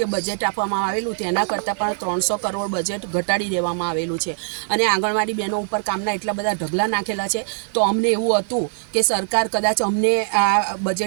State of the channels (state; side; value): silent; left; digital silence